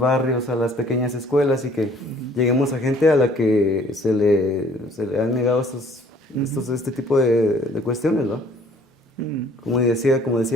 a las pequeñas escuelas y que Ujú, lleguemos a gente a la que se le han negado ujú, este tipo de cuestiones, ¿va? ujú, Como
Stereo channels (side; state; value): both; normal; correlation 0.57